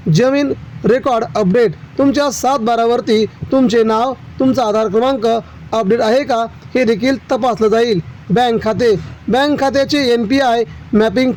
जमीन रेकॉर्ड अपडेट, तुमच्या 7/12वरती तुमचे नाव तुमचा आधार क्रमांक अपडेट आहे का हे देखील तपासलं जाईल। बँक खात्याचे NPI मॅपिंग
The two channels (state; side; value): identical; both; correlation 1.00